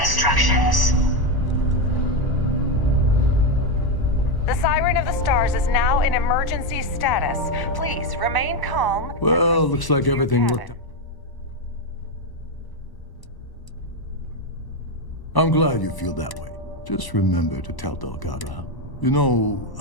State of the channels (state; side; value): late; right; 1.0 ms